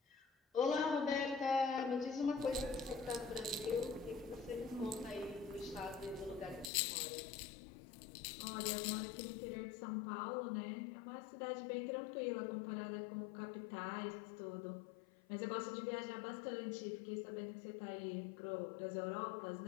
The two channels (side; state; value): right; drops out; at 6.7 s